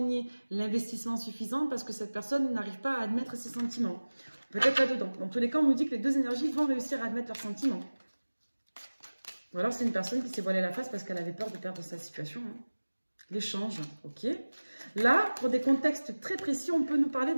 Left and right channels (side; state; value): both; inverted; correlation -1.00